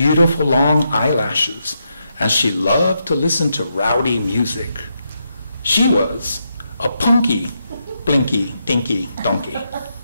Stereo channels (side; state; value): both; inverted; correlation -0.82